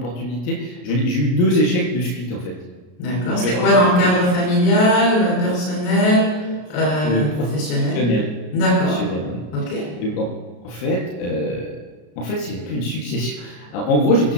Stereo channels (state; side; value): late; right; 33 ms